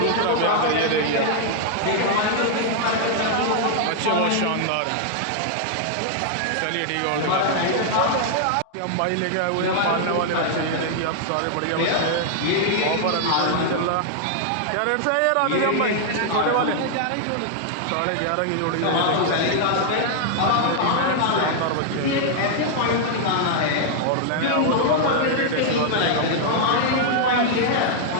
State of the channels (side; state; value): both; different; correlation -0.01